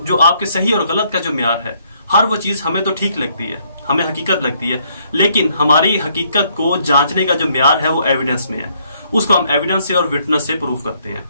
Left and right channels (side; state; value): both; inverted; correlation -0.69